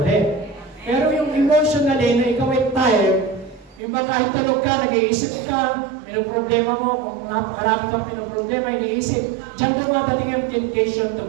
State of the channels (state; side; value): drops out; left; at 3.8 s